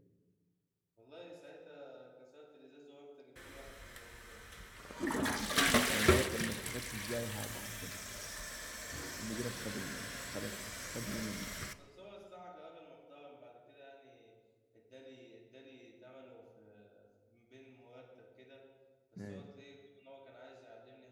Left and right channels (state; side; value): identical; both; correlation 1.00